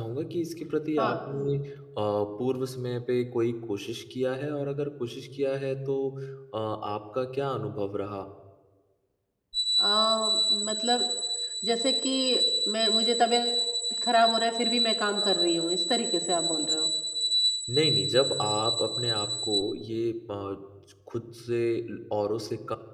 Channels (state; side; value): identical; both; correlation 1.00